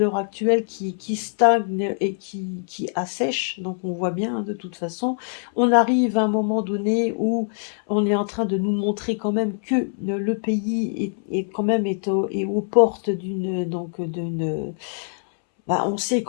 actuelle qui stagne et qui assèche. Donc on voit bien, hein, de toute façon, on arrive à un moment donné où on est en train de nous montrer quand même que le pays est quand même est aux portes d'une, bah, on sait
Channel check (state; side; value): silent; right; 63 dB below the other